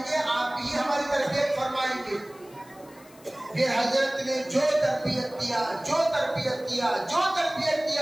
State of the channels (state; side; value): noise; left; hiss, 25 dB below the sound